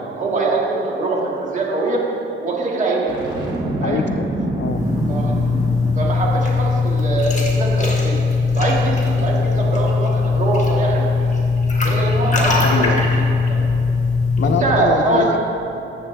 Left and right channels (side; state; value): both; normal; correlation 0.62